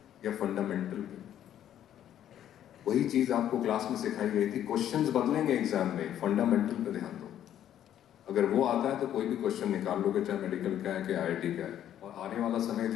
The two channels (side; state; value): right; quieter; 10.9 dB